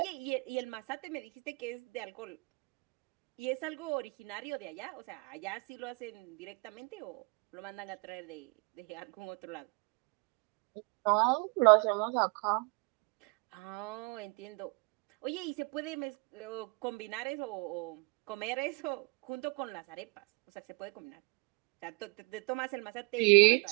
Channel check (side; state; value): left; quieter; 31.1 dB